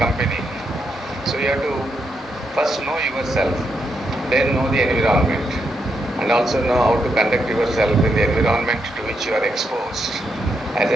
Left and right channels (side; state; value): both; normal; correlation 0.81